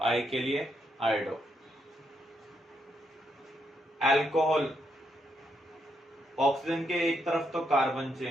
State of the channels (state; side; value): normal; both; correlation 0.78